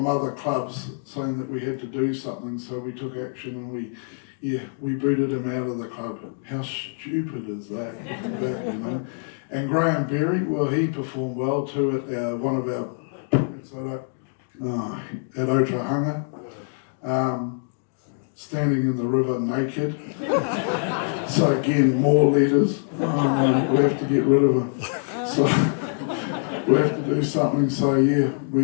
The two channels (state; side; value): silent; right; digital silence